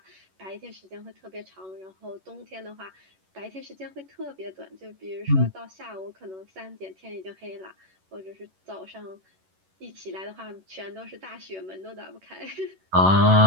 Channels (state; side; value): late; left; 11 ms